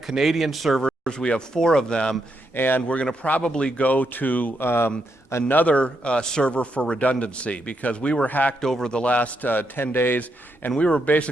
Canadian servers, we have 4 of them, and we're going to probably go to another server for redundancy, because we were hacked over the last 10 days, and we were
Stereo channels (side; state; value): both; normal; correlation 0.81